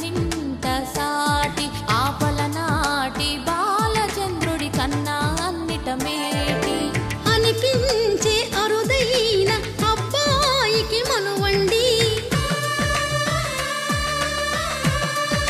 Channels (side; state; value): both; identical; correlation 1.00